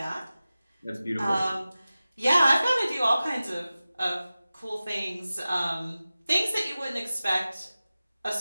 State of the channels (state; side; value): inverted; both; correlation -0.96